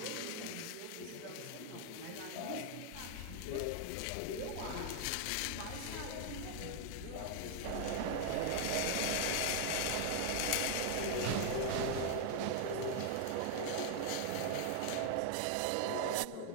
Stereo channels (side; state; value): both; different; correlation 0.00